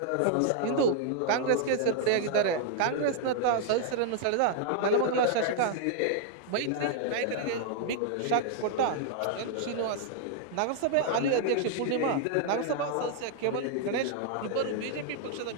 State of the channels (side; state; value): both; different; correlation 0.00